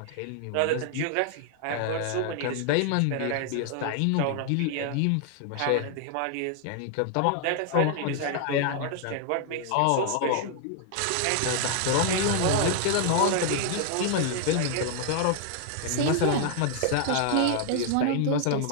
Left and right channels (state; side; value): different; both; correlation 0.00